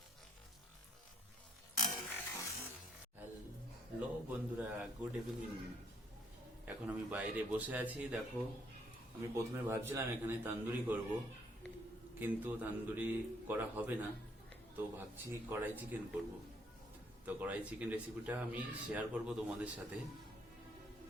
হ্যালো বন্ধুরা, গুড ইভিনিং। এখন আমি বাইরে বসে আছি। দেখো, আমি প্রথমে ভাবছিলাম এখানে তান্দুরি করব, কিন্তু তান্দুরি করা হবে না, তো ভাবছি কড়াই চিকেন করব। তো কড়াই চিকেন রেসিপিটা আমি শেয়ার করব তোমাদের সাথে।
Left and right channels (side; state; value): both; normal; correlation 0.68